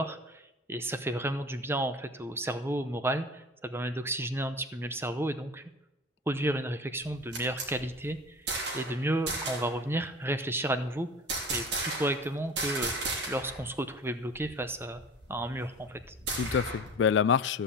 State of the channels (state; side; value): normal; both; correlation 0.38